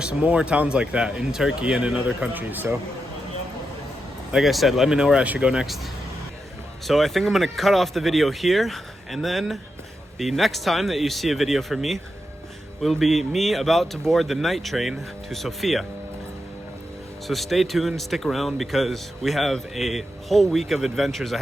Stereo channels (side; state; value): both; normal; correlation 0.86